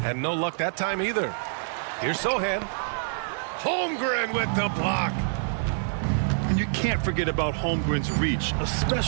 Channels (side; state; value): left; silent; 61 dB below the other